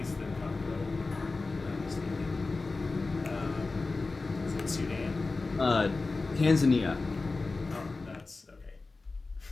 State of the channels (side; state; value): right; quieter; 3.6 dB